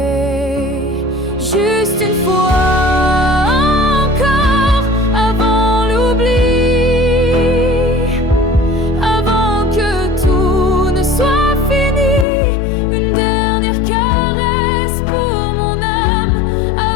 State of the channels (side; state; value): right; drops out; at 12.2 s